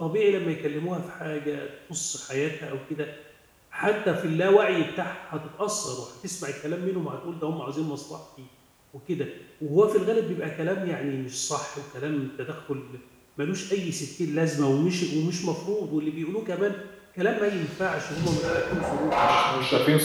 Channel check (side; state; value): both; identical; correlation 1.00